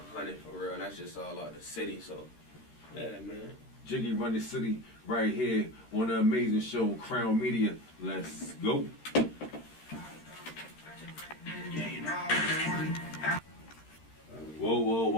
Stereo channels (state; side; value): late; right; 13 ms